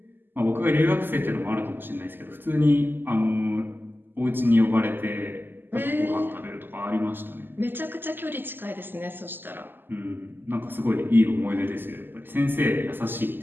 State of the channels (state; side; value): late; left; 0.094 ms